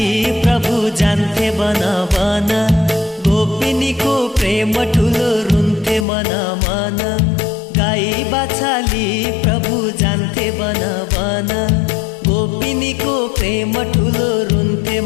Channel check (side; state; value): right; drops out; at 6.1 s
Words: प्रभु जान्थे बन बन गोपिनीको प्रेम ठुलो रुन्थे मन मन गाई बछाली प्रभु जान्थे बन बन गोपिनीको प्रेम ठुलो रुन्थे